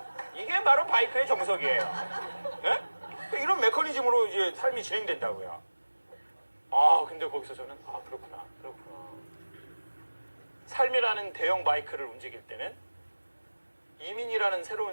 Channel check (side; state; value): both; inverted; correlation -1.00